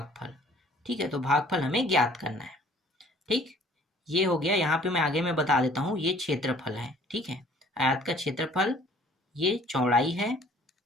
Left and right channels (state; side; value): normal; both; correlation 0.55